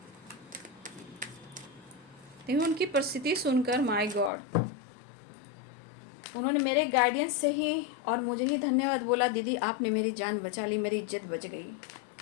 लेकिन उनकी परिस्थिति सुनकर, माय गॉड, उन्होंने मेरे गाइडेंस से ही और मुझे ही धन्यवाद बोला, दीदी आपने मेरी जान बचा ली, मेरी इज्जत बच गई।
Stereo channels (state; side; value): drops out; right; at 4.3 s